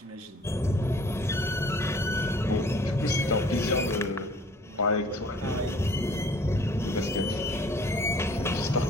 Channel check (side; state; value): both; normal; correlation 0.53